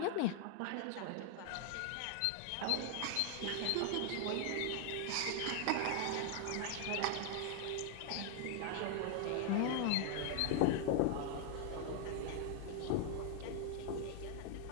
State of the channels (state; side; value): different; both; correlation 0.00